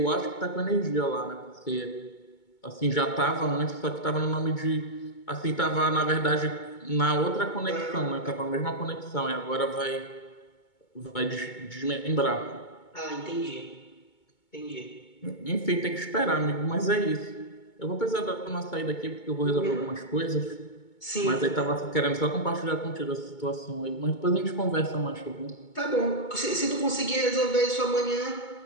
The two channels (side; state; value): right; late; 2.2 ms